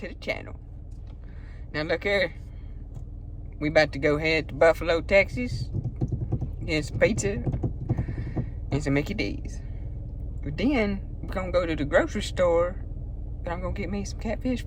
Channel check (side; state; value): both; identical; correlation 1.00